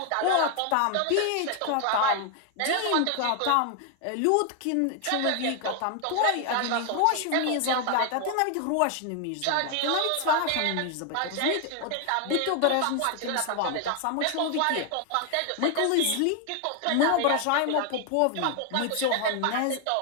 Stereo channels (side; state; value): both; different; correlation 0.00